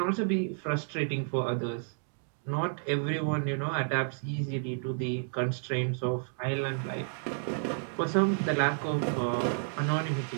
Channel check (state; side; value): silent; left; 56 dB below the other